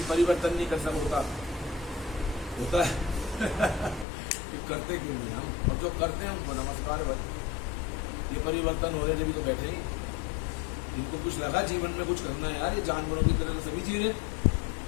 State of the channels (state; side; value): drops out; right; at 4.0 s